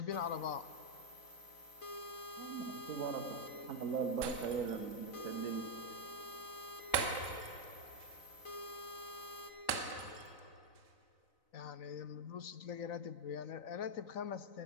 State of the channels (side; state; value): right; late; 4.0 ms